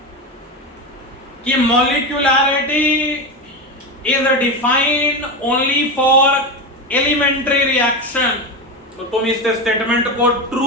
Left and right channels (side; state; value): both; normal; correlation 0.18